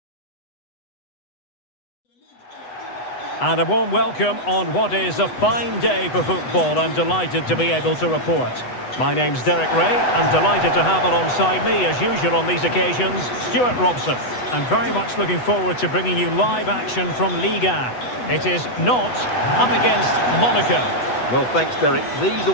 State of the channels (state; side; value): late; right; 8.1 ms